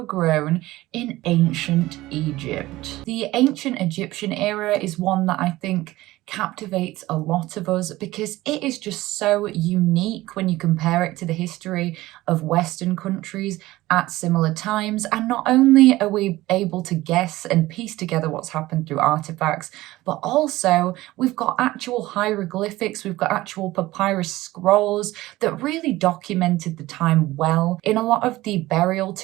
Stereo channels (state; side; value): quieter; left; 17.7 dB